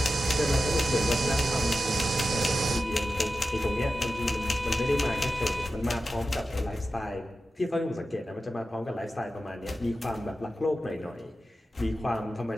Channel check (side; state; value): both; normal; correlation 0.92